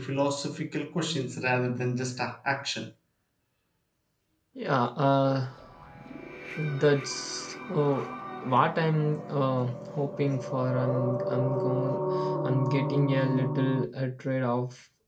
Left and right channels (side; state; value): both; identical; correlation 1.00